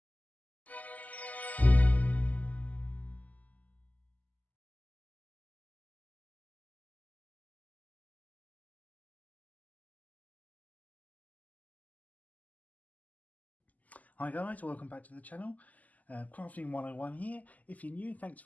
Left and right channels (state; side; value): late; right; 0.077 ms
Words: guys, welcome back to the channel. Crafting 101 here. If you're new, thanks